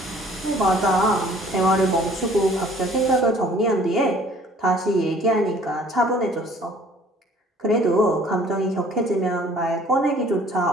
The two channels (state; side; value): normal; both; correlation 0.54